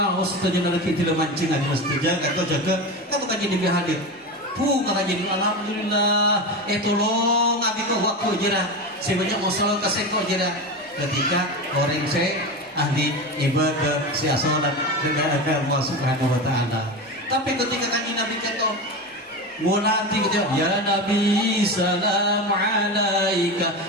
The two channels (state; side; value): normal; both; correlation 0.22